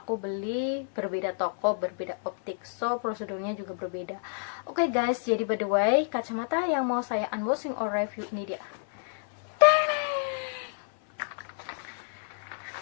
beli berbeda toko, berbeda optik, so prosedurnya juga berbeda. Oke guys, jadi by the way, kacamata yang mau saya unboxing or review ini dia.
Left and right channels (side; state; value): right; silent; 58 dB below the other